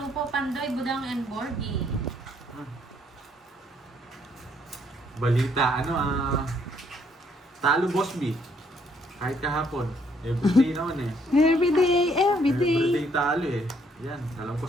po, Pandoy, Budang, and Borgie. Balita, talo Bosby. Kahit kahapon. Everyday naman eh. Every day, every day. Everyday talo eh. Yan, alam ko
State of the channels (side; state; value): both; normal; correlation 0.69